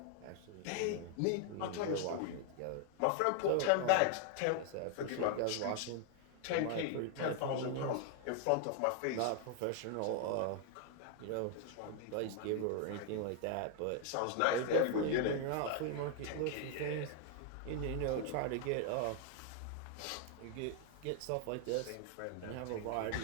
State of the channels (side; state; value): both; different; correlation 0.00